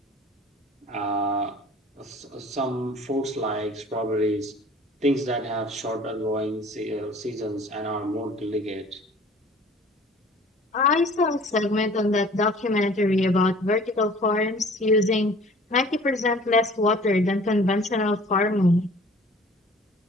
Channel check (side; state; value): both; normal; correlation 0.49